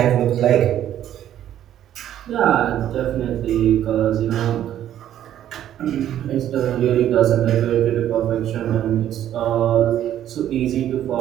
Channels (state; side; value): quieter; left; 11.3 dB